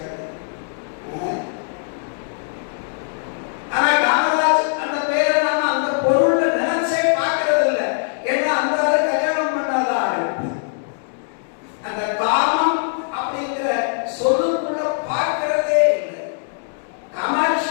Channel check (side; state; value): right; silent; 65 dB below the other